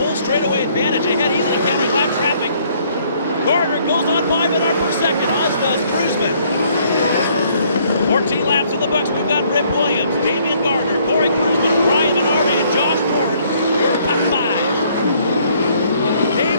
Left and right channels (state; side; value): inverted; both; correlation -0.64